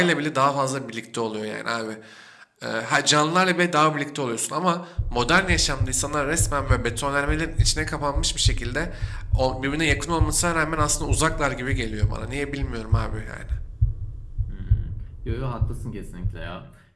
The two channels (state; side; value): identical; both; correlation 1.00